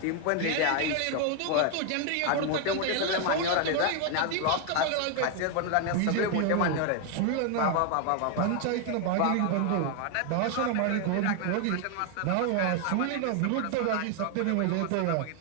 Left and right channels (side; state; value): both; different; correlation 0.01